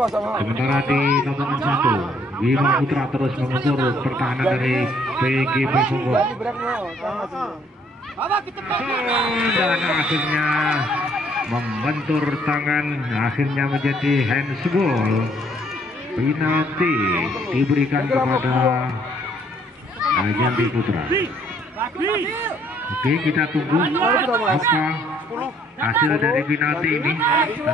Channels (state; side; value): normal; both; correlation 0.65